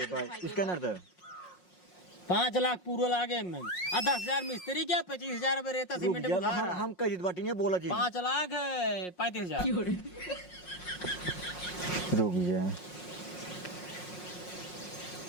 बस। स्कैनर दे। 5 लाख पूरा लागे में और 10,000 मिस्त्री क्या 25,000 रुपए रहता रुक सीमेंट जा, बुधार हम कह दी बाटी नहीं बोला जी। 5 लाख है 35,000 रुक जा।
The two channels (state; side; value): late; right; 5.5 ms